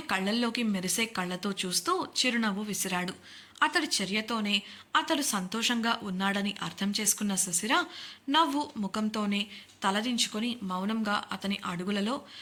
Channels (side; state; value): both; identical; correlation 1.00